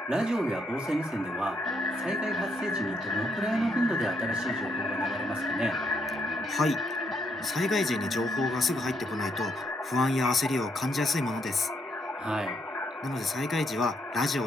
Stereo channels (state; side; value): normal; both; correlation 0.75